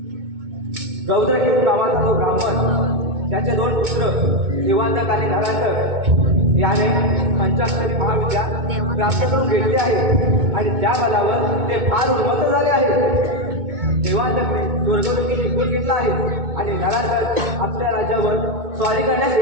रौद्रकेतू नावाचा जो ब्राह्मण, त्याचे 2 पुत्र देवांतक आणि नरांतक याने पंचाक्षरी महाविद्या प्राप्त करून घेतली आहे आणि त्या बलावर ते फार उन्मत्त झाले आहे. देवांतकने स्वर्गलोकी निघून घेतला आहे आणि नरांतक आपल्या राज्यावर स्वारी करण्यास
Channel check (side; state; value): left; late; 2.2 ms